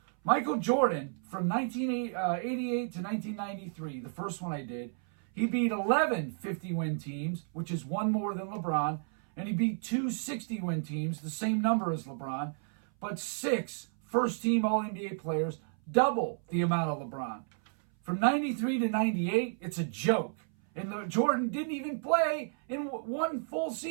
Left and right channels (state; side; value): silent; left; 57 dB below the other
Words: Michael Jordan, from 1988 to 1993, the first one I did, he beat 11 50-win teams, which is 1 more than LeBron, and he beat 2 60-win teams, the same number as LeBron, but 6 first-team All-NBA players, double the amount of LeBron. From 93 to 98, it's a joke. And Jordan didn't even play in 1 full